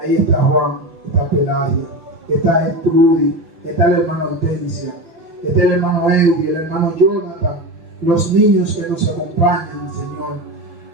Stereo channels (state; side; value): late; left; 6.1 ms